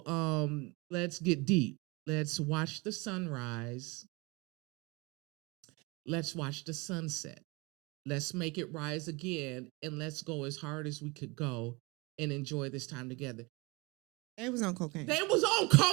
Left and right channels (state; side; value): quieter; left; 26.4 dB